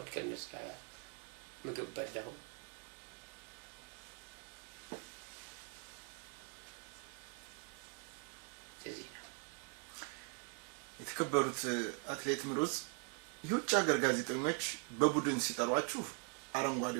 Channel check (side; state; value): left; quieter; 37.7 dB